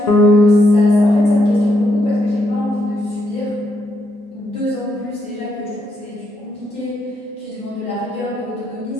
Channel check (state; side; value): normal; both; correlation 0.78